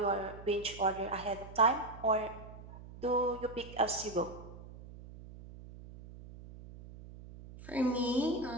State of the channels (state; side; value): noise; right; hum, 15 dB below the sound